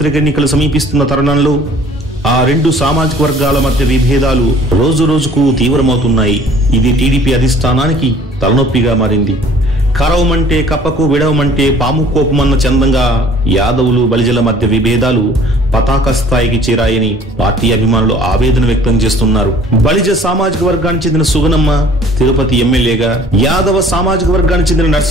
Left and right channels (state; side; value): normal; both; correlation 0.52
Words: ఎన్నికలు సమీపిస్తున్న తరుణంలో ఆ రెండు సామాజిక వర్గాల మధ్య విభేదాలు రోజు రోజుకు తీవ్రమవుతున్నాయి. ఇది టీడీపీ అధిష్టానానికి తలనొప్పిగా మారింది. కరవమంటే కప్పకు విడవమంటే పాము కోపమన్న చందంగా యాదవులు బలిజల మధ్య విభేదాలు పతాక స్థాయికి చేరాయని పార్టీ అభిమానులు ఆవేదన వ్యక్తం చేస్తున్నారు. బలిజ సామాజిక వర్గానికి చెందిన సుగనమ్మ తిరుపతి ఎమ్మెల్యేగా, యాదవ సామాజిక వర్గానికి చెందిన